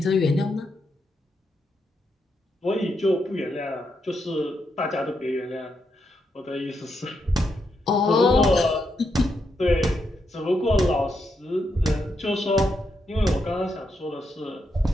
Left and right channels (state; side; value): normal; both; correlation 0.81